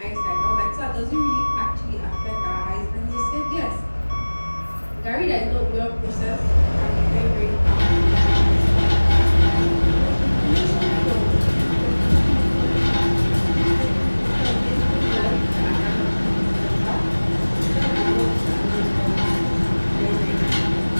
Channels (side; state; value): both; inverted; correlation -1.00